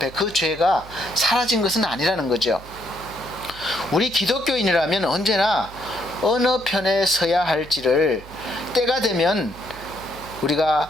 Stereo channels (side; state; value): right; noise; hum, 18 dB below the sound